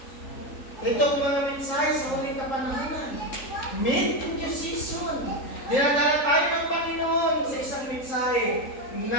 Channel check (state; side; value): late; right; 3.8 ms